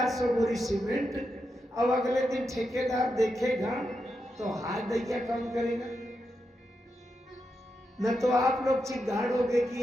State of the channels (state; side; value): normal; both; correlation 0.86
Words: बोरी सीमेंट, अब अगले दिन ठेकेदार देखेगा तो हाथ दैया काम करेगा। न तो आप लोग चिल्लाओगे